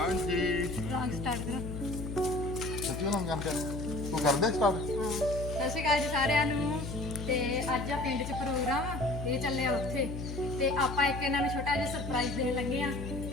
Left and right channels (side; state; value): left; noise; hum, 6 dB below the sound